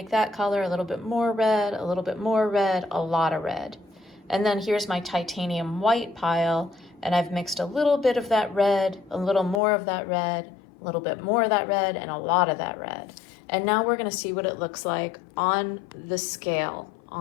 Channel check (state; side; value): drops out; right; at 9.6 s